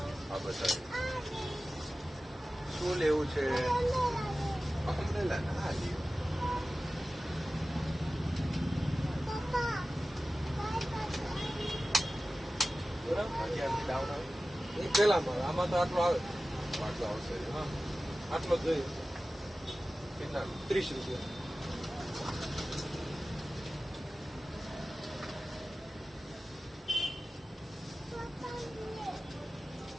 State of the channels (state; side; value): normal; both; correlation 0.96